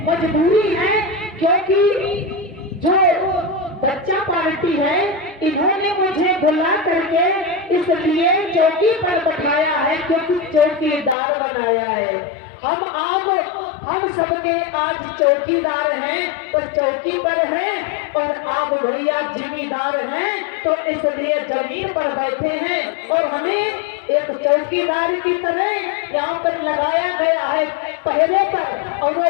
मजबूरी है क्योंकि जो बच्चा पार्टी है इन्होंने मुझे बुला करके इसलिए चौकी पर बैठाया है, क्योंकि चौकीदार बनाया है। हम सबके आज चौकीदार हैं तो चौकी पर हैं, और आप भैया जिम्मेदार हैं तो इसलिए जमीन पर बैठे हैं। और हमें एक चौकीदार की तरह यहाँ पर लगाया गया है पहरे पर, और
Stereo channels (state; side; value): drops out; right; at 11.2 s